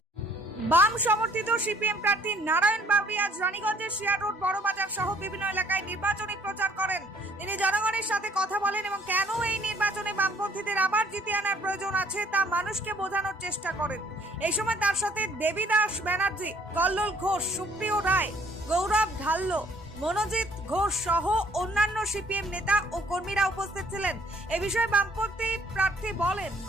বাম সমর্থিত সিপিএম প্রার্থী নারায়ণ বাবরি আজ রানীগঞ্জের শিয়ার রোড বড়বাজার সহ বিভিন্ন এলাকায় নির্বাচনী প্রচার করেন। তিনি জনগণের সাথে কথা বলেন এবং কেন এই নির্বাচনে বামপন্থীদের আবার জিতিয়ে আনার প্রয়োজন আছে তা মানুষকে বোঝানোর চেষ্টা করেন। এই সময় তার সাথে দেবীদাস ব্যানার্জি, কল্লোল ঘোষ, সুপ্রিয় রায়, গৌরব ঢাল্লো, মনোজিৎ ঘোষ সহ অন্যান্য সিপিএম নেতা ও কর্মীরা উপস্থিত ছিলেন। এ বিষয়ে বামপন্থী প্রার্থী বলেন,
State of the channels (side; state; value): both; normal; correlation 0.61